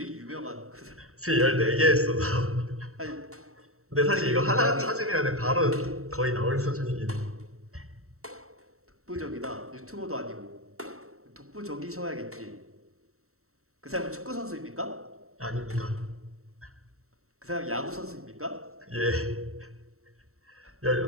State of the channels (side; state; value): left; late; 0.63 ms